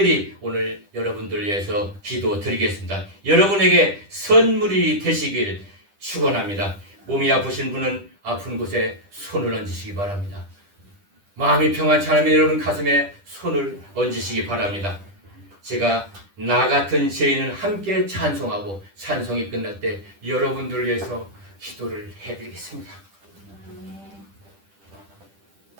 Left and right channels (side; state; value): left; late; 10 ms